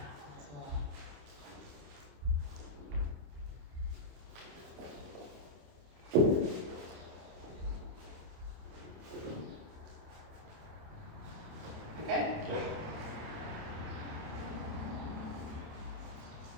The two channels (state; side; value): late; left; 27 ms